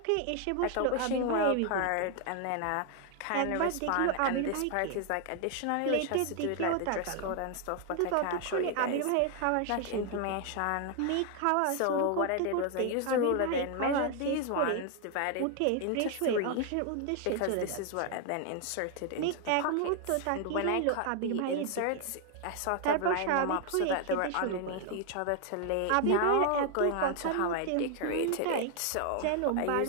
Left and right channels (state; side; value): different; both; correlation 0.00